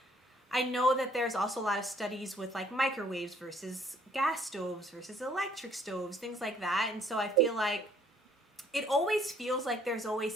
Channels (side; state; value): both; normal; correlation 0.62